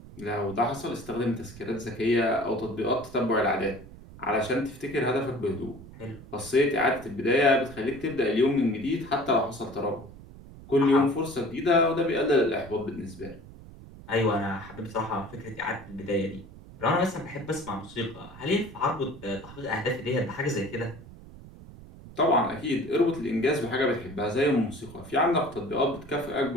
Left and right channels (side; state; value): right; noise; rumble, 18 dB below the sound